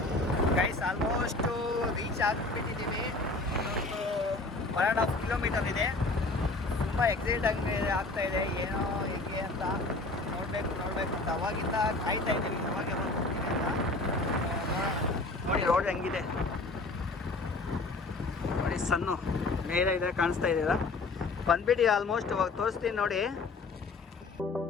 guys. Almost reach ಆಗಿಬಿಟ್ಟಿದ್ದೀವಿ. ಒಂದು 1.5 ಕಿಲೋಮೀಟರ್ ಇದೆ. ತುಂಬ ಎಕ್ಸೈಟ್ ಆಗ್ತಾಯಿದೆ, ಏನೋ ಹೇಗೆ ಅಂತ ನೋಡಬೇಕು ಅಂತ ಅವಾಗಿಂದ ಕಾಯ್ತಾ ಇದ್ದೀವಿ. ಅವಾಗ ನೋಡಿ ರೋಡ್ ಹೆಂಗಿದೆ ನೋಡಿ, ಸಣ್ಣ ಮೇಲೆ ಇದೆ, ಕಾಣಿಸ್ತಾ ಇದೆಯಲ್ಲ. ಬಂದ್ಬಿಟ್ಟು ಆಲ್ಮೋಸ್ಟ್ ಇವಾಗ ತೋರಿಸ್ತೀನಿ ನೋಡಿ.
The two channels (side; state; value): right; quieter; 3.3 dB